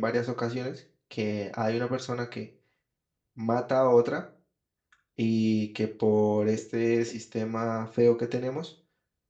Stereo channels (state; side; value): identical; both; correlation 1.00